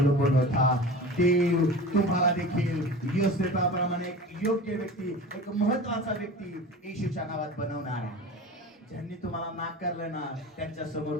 होता. देव तुम्हाला देखील योसेफाप्रमाणे एक योग्य व्यक्ती, एक महत्वाचा व्यक्ती येशूच्या नावात बनवणार आहे. ज्यांनी तुम्हाला नाकारलं ना, त्यांच्या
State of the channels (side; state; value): both; normal; correlation 0.35